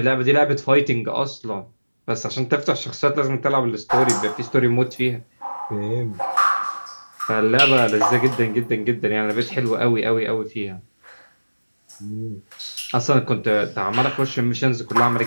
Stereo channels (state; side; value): inverted; both; correlation -1.00